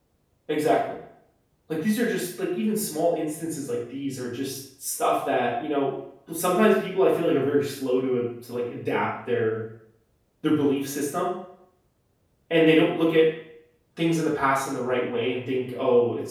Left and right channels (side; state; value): both; identical; correlation 1.00